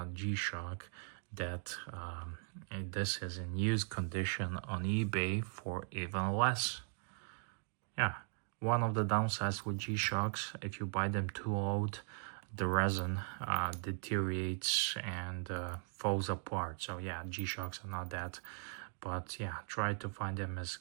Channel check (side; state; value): left; silent; 52 dB below the other